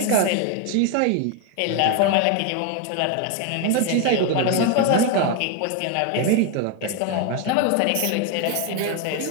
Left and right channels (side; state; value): both; different; correlation 0.01